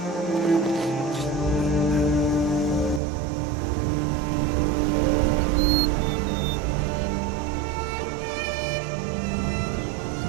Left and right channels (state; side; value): drops out; left; at 3.0 s